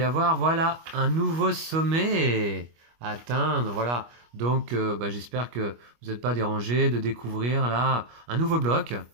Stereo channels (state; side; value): late; left; 25 ms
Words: avoir, voilà, un nouveau sommet à atteindre, voilà. Donc, j'espère que vous n'êtes pas dérangés de découvrir là un nouveau bloc.